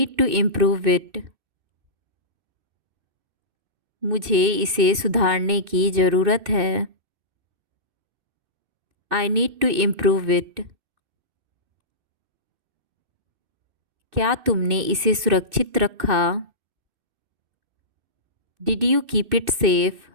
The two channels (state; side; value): late; left; 2.6 ms